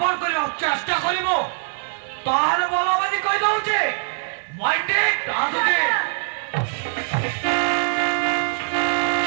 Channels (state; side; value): silent; left; 64 dB below the other